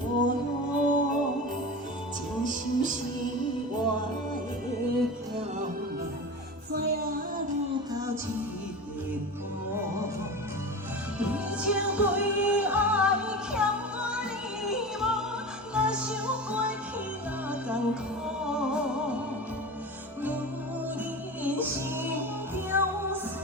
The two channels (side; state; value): both; normal; correlation 0.29